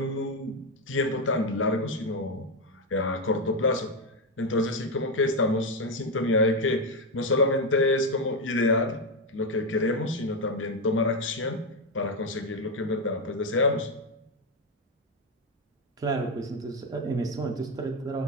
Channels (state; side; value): normal; both; correlation 0.07